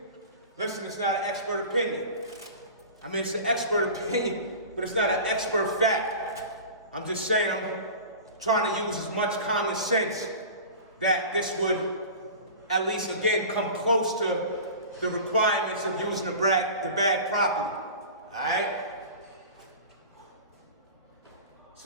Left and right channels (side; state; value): both; inverted; correlation -0.36